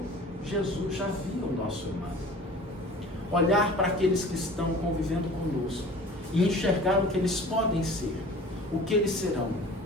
Jesus já via o nosso irmão. Olhar para aqueles que estão convivendo conosco e enxergar o que eles podem ser, o que eles serão.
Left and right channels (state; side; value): normal; both; correlation 0.43